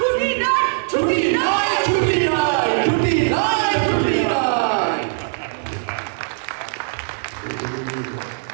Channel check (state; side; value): silent; left; digital silence